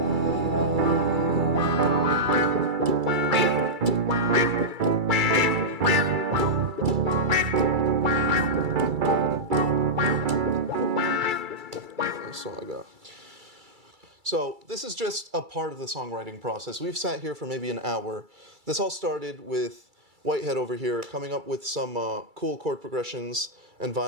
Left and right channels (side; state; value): left; late; 2.3 ms